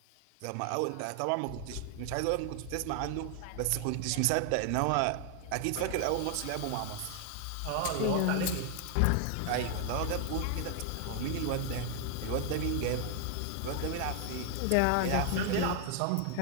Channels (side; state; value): both; different; correlation 0.00